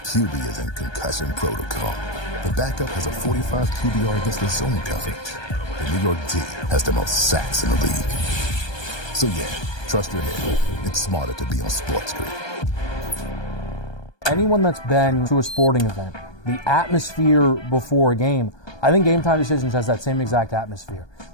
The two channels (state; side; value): late; right; 1.2 ms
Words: is in concussion protocol. The backup has a 45 QBR against the zone coverage. The New York D has the most sacks in the league. So yeah, trust your head. It's smarter to be on SportsGrid. Anyone that's been to a sporting event, the atmosphere before a game, I think Game Time Decisions has that same exact atmosphere.